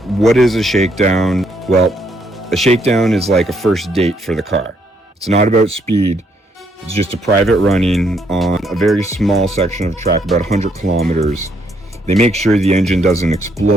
What is a shakedown? Well, a shakedown is like a first date for the car. It's not about speed. It's just a private running on a very small section of track, about 100 kilometers. They make sure the engine doesn't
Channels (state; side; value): normal; both; correlation 0.72